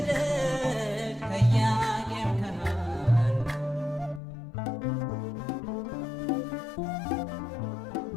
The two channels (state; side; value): drops out; right; at 4.2 s